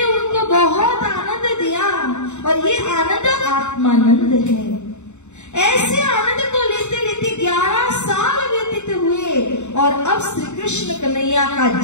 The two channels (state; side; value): late; right; 0.83 ms